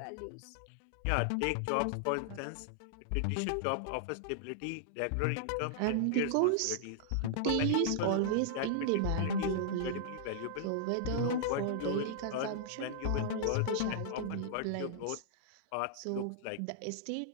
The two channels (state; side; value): different; both; correlation -0.01